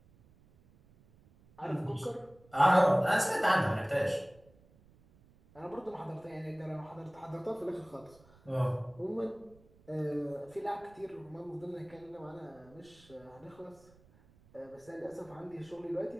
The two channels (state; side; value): noise; right; rumble, 27 dB below the sound